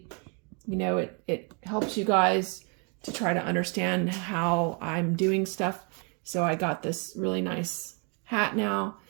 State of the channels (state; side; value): quieter; left; 36.3 dB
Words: you know, it helps you guys to try to understand how I'm doing stuff. So I got this really nice hat now,